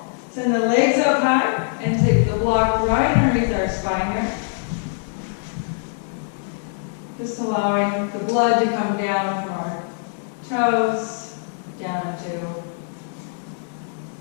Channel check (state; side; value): silent; right; digital silence